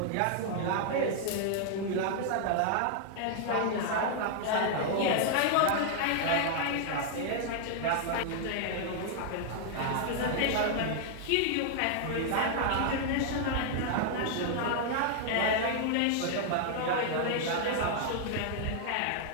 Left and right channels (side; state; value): both; different; correlation 0.00